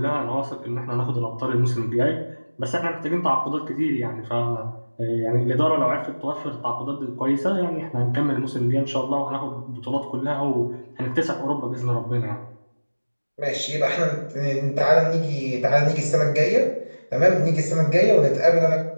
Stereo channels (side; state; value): both; inverted; correlation -1.00